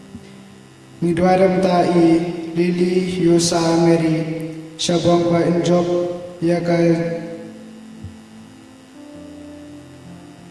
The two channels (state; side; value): identical; both; correlation 1.00